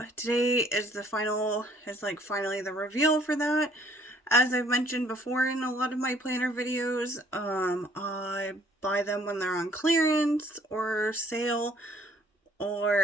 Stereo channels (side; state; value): both; normal; correlation 0.61